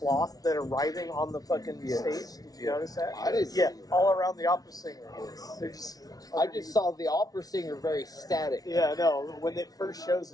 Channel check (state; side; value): late; right; 0.18 ms